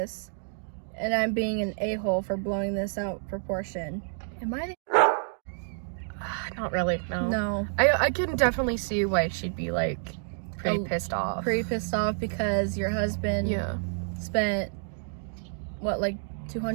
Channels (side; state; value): left; silent; digital silence